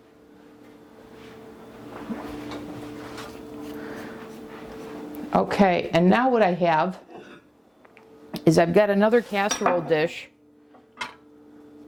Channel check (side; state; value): both; identical; correlation 1.00